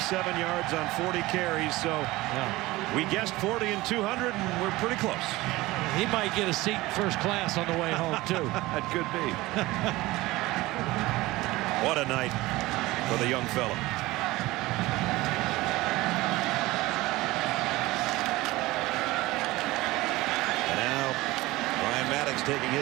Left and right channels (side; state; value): left; quieter; 19.4 dB